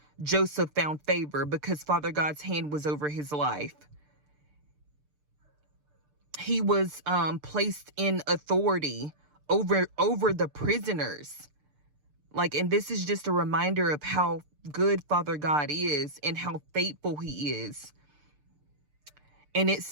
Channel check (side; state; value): left; late; 6.7 ms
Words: Joseph found favor because Father God's hand was over his life. He was placed in authority over the prisoners. And this is just a reminder of how good Father God is and how faithful he is. And it